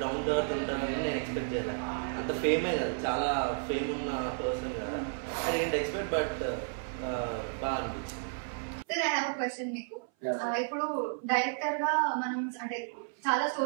డౌన్ టు అర్త్ ఉంటానని నేను ఎక్స్పెక్ట్ చేయలేదు. అంత ఫేమే కదా, చాలా ఫేమ్ ఉన్న పర్సన్ కదా, ఐ డోంట్ ఎక్స్పెక్ట్, బట్ బాగా అనిపించింది. Sir, I have a question మీకు. ఇప్పుడు డైరెక్టర్ గా మనం అంటే చాలా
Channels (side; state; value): left; silent; 56 dB below the other